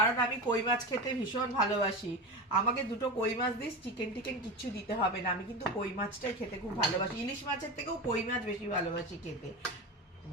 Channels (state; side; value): normal; both; correlation 0.23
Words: আমি কই মাছ খেতে ভীষণ ভালোবাসি। আমাকে দুটো কই মাছ দিস, চিকেন টিকেন কিচ্ছু দিতে হবে না। আমি কিন্তু কই মাছটাই খেতে খুব ভালোবাসি, ইলিশ মাছের থেকেও কই মাছ বেশি ভালোবাসি খেতে।